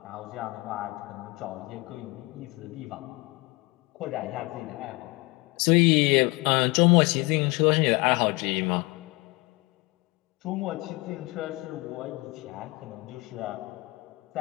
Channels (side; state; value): right; quieter; 24.3 dB